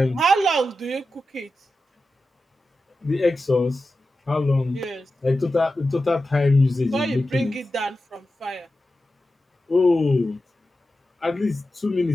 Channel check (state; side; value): normal; both; correlation 0.92